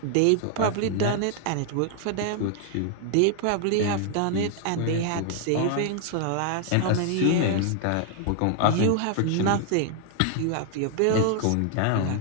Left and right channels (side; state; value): both; different; correlation 0.00